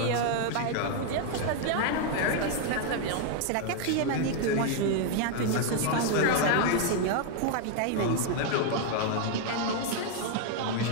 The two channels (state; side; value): different; both; correlation 0.00